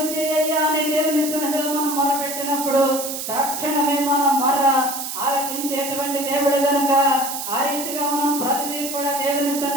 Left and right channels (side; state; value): right; noise; hiss, 6 dB below the sound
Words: చేయ్యా అని దేవుని సన్నిధిలో మనం మొరపెట్టినప్పుడు తక్షణమే మనం ఆలకించేటువంటి దేవుడు కనుక ఆ రీతిగా మనం ప్రతిదీ కూడా దేవుని